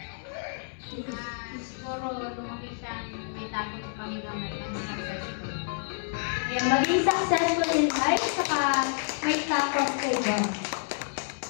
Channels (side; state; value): right; silent; 59 dB below the other